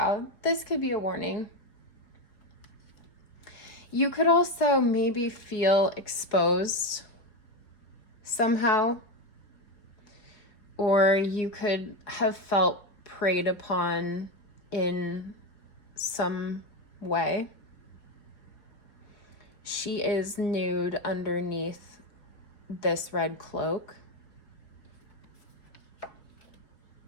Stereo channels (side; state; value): right; late; 4.8 ms